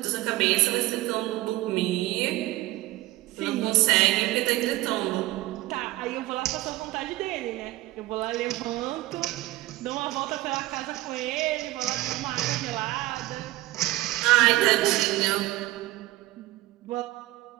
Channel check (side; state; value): left; quieter; 17.7 dB